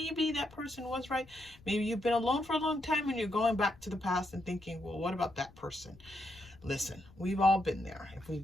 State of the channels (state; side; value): noise; left; rumble, 23 dB below the sound